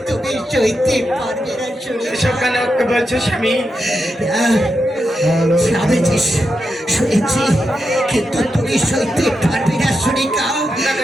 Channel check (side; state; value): both; normal; correlation 0.87